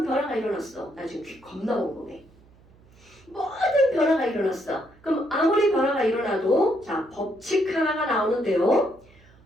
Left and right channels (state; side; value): noise; right; hum, 28 dB below the sound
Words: 변화가 일어났어. 나 지금 귀 겁나 궁금해. 모든 변화가 일어났어. 그럼 아무리 변화가 일어나도 자 법칙 하나가 나오는데요.